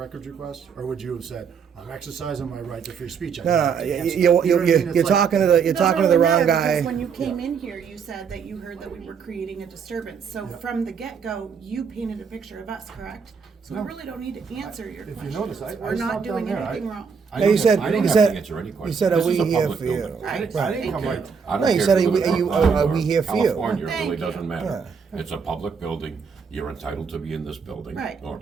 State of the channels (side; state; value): left; quieter; 6.2 dB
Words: request? Or would you have said, I'm exercising my right to free speech? I don't have to answer." You know what I mean? It's You're like- talking to the It doesn't wrong really matter, guy. because when you came in here, you said that you heard that we were creating a disturbance. So from the get-go, you painted a picture of us, correct? So we really don't need to answer your If you questions. notice, I We're not stopped down doing there. anything wrong. I No, you don't said have- I don't you have said to answer any you questions. said, are This we is a here public for you? building. Right. I didn't come Okay. right. I No, don't you care said, if are you we- live in are Brookline or we here for you? California, it Thank really you. doesn't matter. It's a public building. You're entitled to be in this building. Right. Or